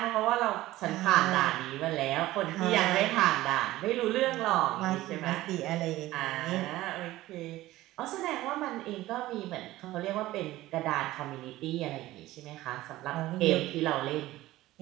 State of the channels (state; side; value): quieter; left; 16.6 dB